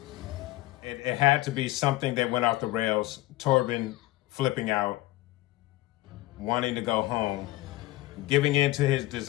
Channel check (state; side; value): quieter; right; 17.7 dB